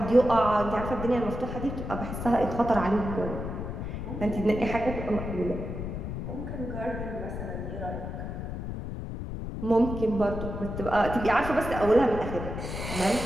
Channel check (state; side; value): noise; left; rumble, 6 dB below the sound